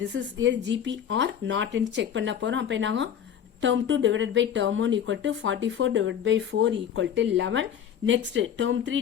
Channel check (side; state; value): right; quieter; 9.0 dB